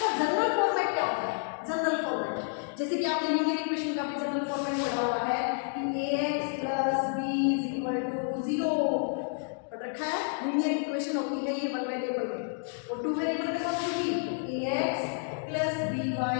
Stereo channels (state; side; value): silent; right; 58 dB below the other